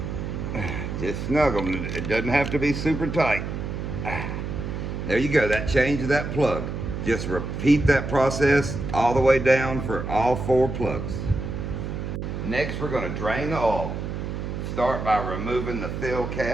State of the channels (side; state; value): right; noise; hum, 5 dB below the sound